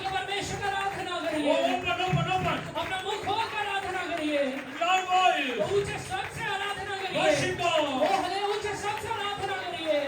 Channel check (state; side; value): identical; both; correlation 1.00